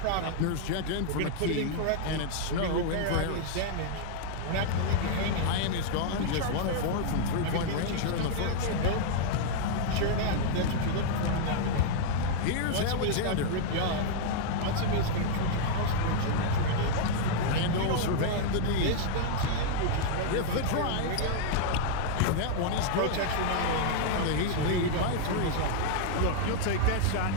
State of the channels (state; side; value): different; both; correlation -0.01